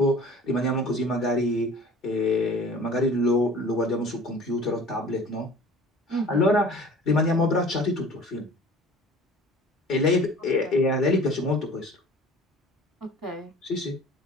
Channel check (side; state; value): both; normal; correlation 0.45